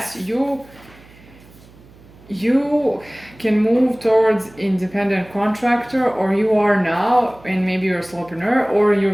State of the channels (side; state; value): right; noise; hum, 24 dB below the sound